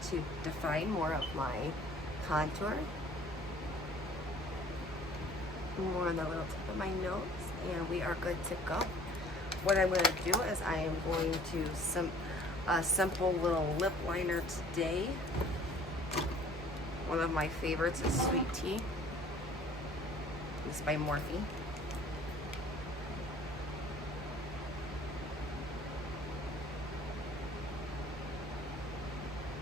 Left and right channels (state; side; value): normal; both; correlation 0.52